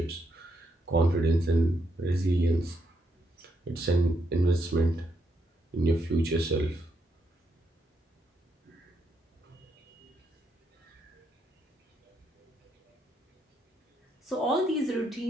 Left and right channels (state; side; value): normal; both; correlation 0.78